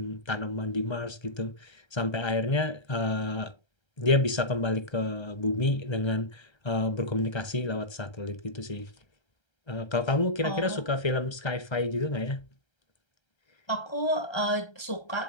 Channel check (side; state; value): right; late; 1.3 ms